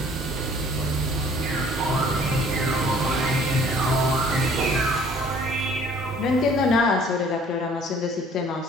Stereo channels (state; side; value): normal; both; correlation 0.54